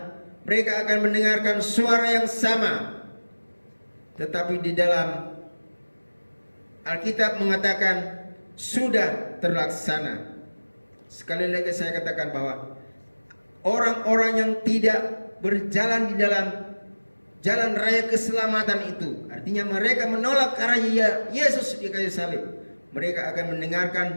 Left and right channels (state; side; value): inverted; both; correlation -1.00